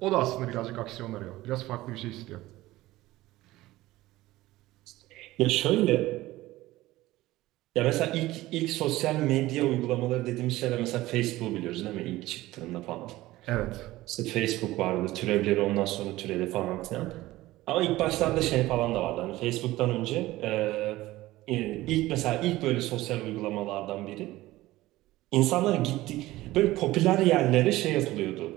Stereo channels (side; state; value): left; quieter; 17.4 dB